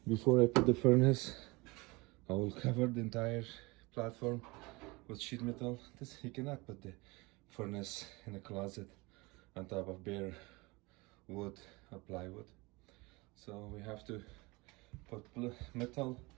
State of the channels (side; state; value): left; quieter; 24.5 dB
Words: Before I put the furnace, I will cover the entire platform with sheet metal. This, you cannot put the furnace in a closet on top of bare wood or plywood. So we have to put metal,